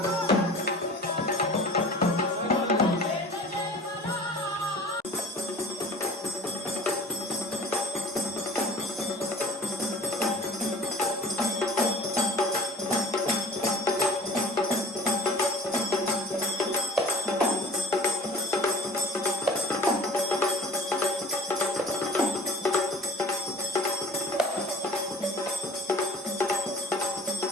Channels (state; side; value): normal; both; correlation 0.43